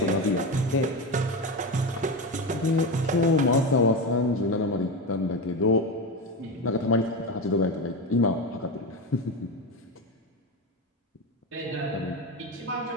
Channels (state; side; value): normal; both; correlation 0.18